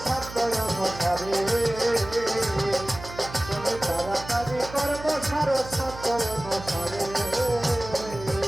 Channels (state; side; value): noise; right; hum, 13 dB below the sound